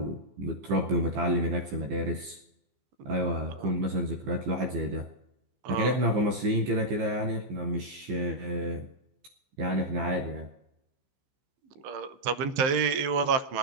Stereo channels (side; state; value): left; late; 15 ms